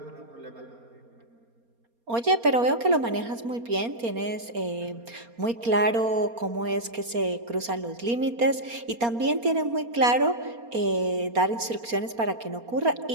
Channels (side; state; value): left; late; 4.3 ms